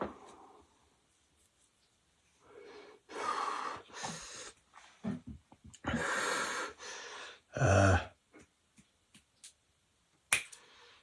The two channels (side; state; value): both; identical; correlation 1.00